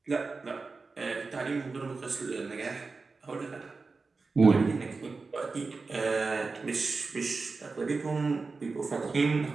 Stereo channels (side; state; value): left; quieter; 4.1 dB